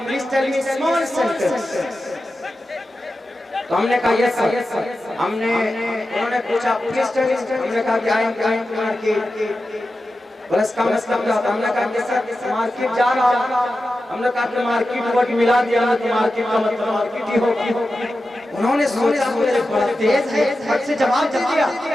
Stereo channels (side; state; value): both; normal; correlation 0.92